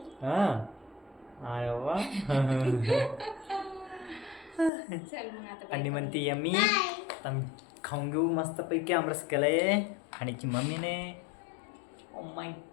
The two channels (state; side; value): drops out; right; at 4.7 s